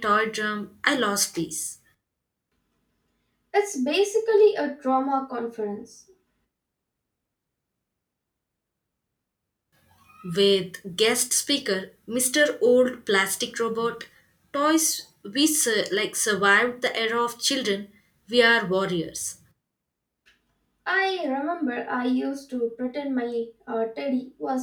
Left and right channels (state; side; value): identical; both; correlation 1.00